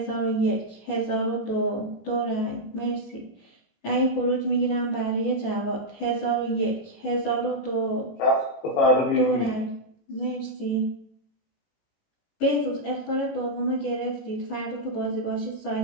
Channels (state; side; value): late; right; 18 ms